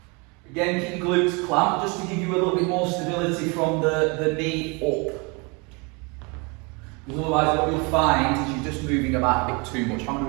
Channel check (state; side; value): quieter; left; 29.9 dB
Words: Again, keep your glutes clamped, just to give you a little bit more stability from the knee up. Because otherwise what you'll find is you're just moving about a bit too much. How many are